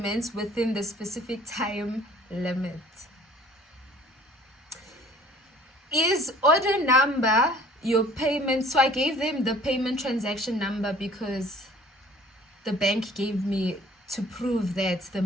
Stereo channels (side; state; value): both; normal; correlation 0.52